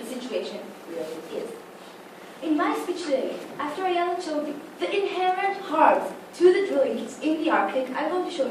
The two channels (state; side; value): identical; both; correlation 1.00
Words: situation really is. In my speech today, after I showed the inherent harms to the drilling in the Arctic, I'm going to show